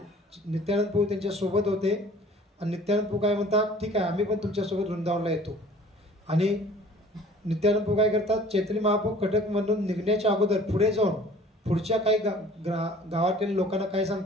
नित्यानंद प्रभू त्यांच्या सोबत होते आणि नित्यानंद प्रभू काय म्हणतात, ठीक आहे आम्ही पण तुमच्यासोबत वृंदावनला येतो. आणि नित्यानंद प्रभू काय करतात, चैतन्य महाप्रभू कटक मधून निघण्याच्या अगोदर पुढे जाऊन पुढच्या काही गावातील लोकांना काय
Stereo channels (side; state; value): both; normal; correlation 0.50